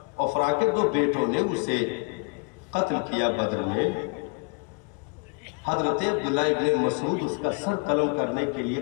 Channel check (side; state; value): right; quieter; 33.4 dB